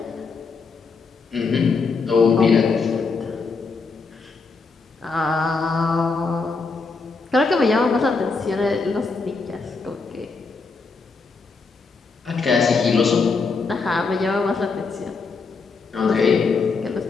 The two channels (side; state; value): right; quieter; 4.5 dB